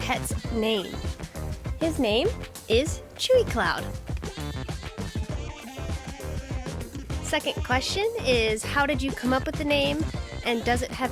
name? His name is Chewy Cloud. Second question is, how did you come up with the name, and does it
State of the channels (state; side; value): identical; both; correlation 1.00